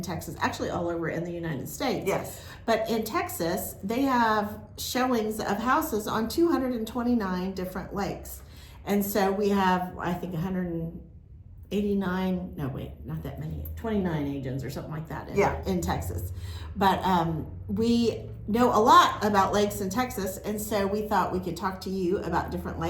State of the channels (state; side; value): identical; both; correlation 1.00